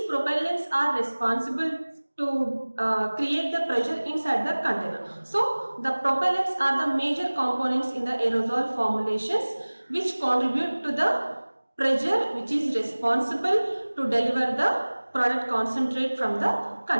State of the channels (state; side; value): inverted; both; correlation -1.00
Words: propellants are responsible to create the pressure inside the container. So the propellants are the major components in the aerosol formulations which contribute to the pressure which is responsible to deliver the product concentrate from the